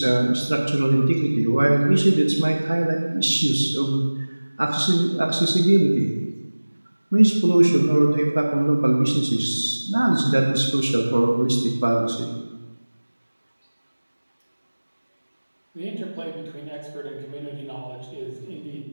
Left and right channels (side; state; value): both; inverted; correlation -1.00